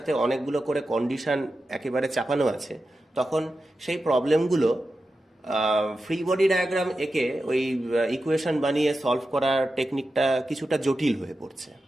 অনেকগুলো করে কন্ডিশন একেবারে চাপানো আছে, তখন সেই প্রবলেমগুলো ফ্রি বডি ডায়াগ্রাম এঁকে ওই ইকুয়েশন বানিয়ে সলভ করার টেকনিকটা কিছুটা জটিল হয়ে পড়ছে।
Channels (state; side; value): normal; both; correlation 0.91